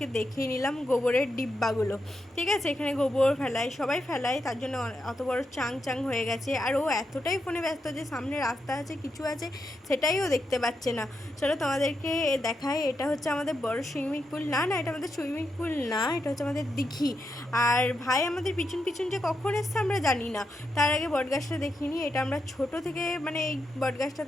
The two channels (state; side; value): normal; both; correlation 0.84